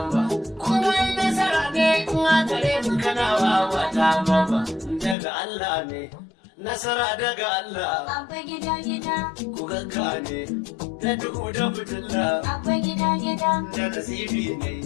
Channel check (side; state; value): right; drops out; at 5.2 s